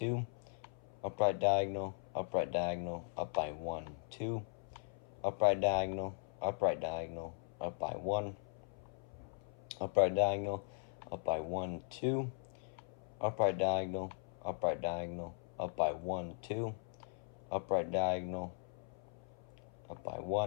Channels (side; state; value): right; silent; 52 dB below the other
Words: upright diagonal, up by 1, 2, upright diagonal, up by 1, upright diagonal, up by 1, 2, upright diagonal, up by 1, 2, upright diagonal, up by